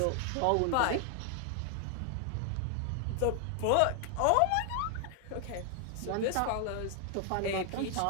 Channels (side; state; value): both; different; correlation 0.00